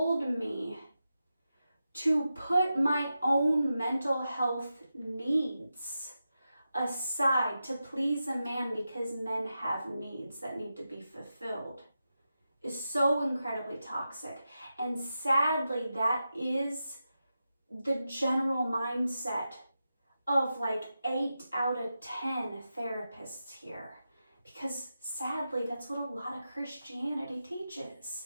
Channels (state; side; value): inverted; both; correlation -0.90